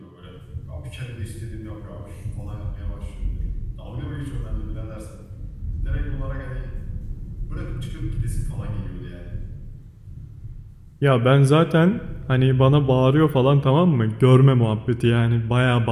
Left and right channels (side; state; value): both; identical; correlation 1.00